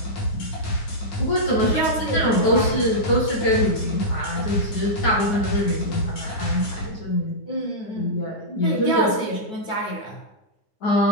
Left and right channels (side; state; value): right; late; 9.6 ms